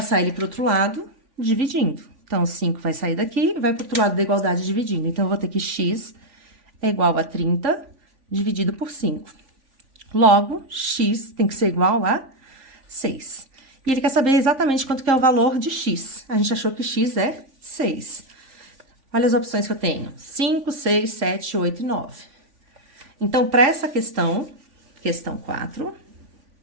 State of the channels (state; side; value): late; left; 3.5 ms